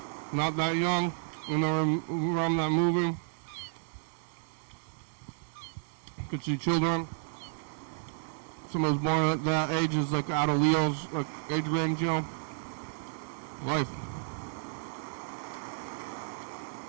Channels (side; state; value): left; silent; digital silence